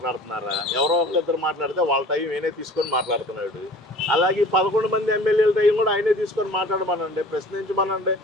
ఎవరో ఒకరిద్దరు మాట్లాడితే వాళ్ళ టైం ఆయనే తీసుకొని మాట్లాడుతున్నాడు. అలాగే 11 మంది ఎమ్మెల్యేల టైం కూడా ఆయనే తీసుకొని మాట్లాడమనండి, ప్రశ్నించమనండి.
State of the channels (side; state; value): both; normal; correlation 0.45